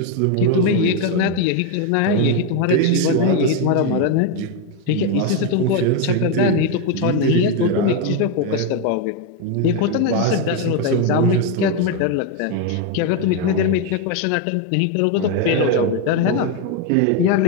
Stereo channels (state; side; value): different; both; correlation 0.02